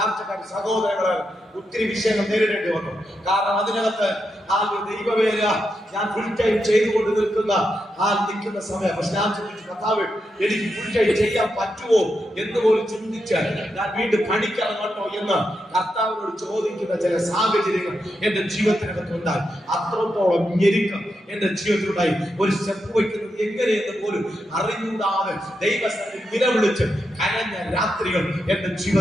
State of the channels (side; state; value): both; normal; correlation 0.85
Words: സഹോദരങ്ങൾ ഒത്തിരി വിഷയങ്ങൾ നേരിടേണ്ടി വന്നു. കാരണം അതിനകത്ത് ആ ദൈവവേല ഞാൻ ഫുൾ ടൈം ചെയ്തുകൊണ്ട് നിൽക്കുന്ന സമയം. പക്ഷെ ഞാൻ ചിന്തിച്ചു, കർത്താവേ, എനിക്ക് ഫുൾ ടൈം ചെയ്യാൻ പറ്റുമോ എന്ന് പോലും ചിന്തിച്ച് ഞാൻ വീണ്ടും പണിക്കിറങ്ങട്ടോ എന്ന് കർത്താവിനോട് ചോദിക്കുന്ന ചില സാഹചര്യങ്ങൾ എന്റെ ജീവിതത്തിനകത്ത് ഉണ്ടായി. അത്രത്തോളം ഞെരുക്കം എന്റെ ജീവിതത്തിലുണ്ടായി. ഒരു സ്റ്റെപ്പ് വയ്ക്കുന്നത് എങ്ങനെയെന്ന് പോലും അറിഞ്ഞൂടാതെ ദൈവസ്ഥലിൽ നിലവിളിച്ച് കരഞ്ഞ രാത്രികൾ എന്റെ